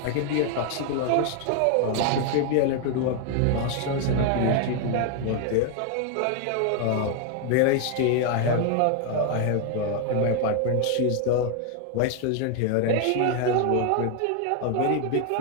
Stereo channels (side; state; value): both; different; correlation 0.01